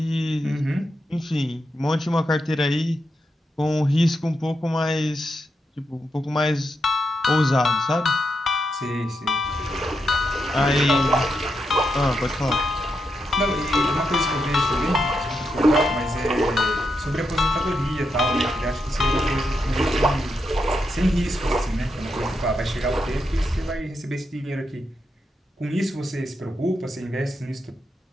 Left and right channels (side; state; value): both; normal; correlation 0.84